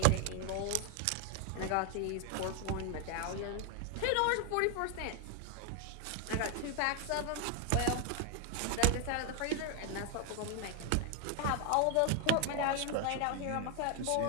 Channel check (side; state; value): both; different; correlation 0.01